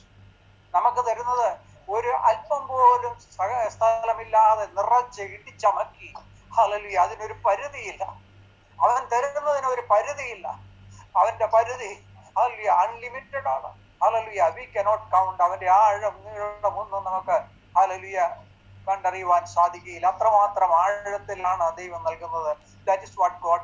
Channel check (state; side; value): identical; both; correlation 1.00